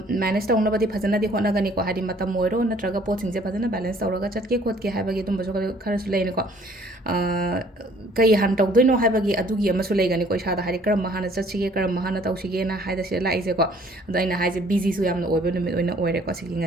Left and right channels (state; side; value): normal; both; correlation 0.57